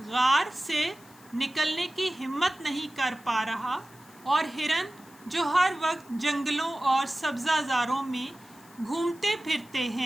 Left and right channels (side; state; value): left; noise; hiss, 25 dB below the sound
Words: غار سے نکلنے کی ہمت نہیں کر پا رہا، اور ہرن جو ہر وقت جنگلوں اور سبزہ زاروں میں گھومتے پھرتے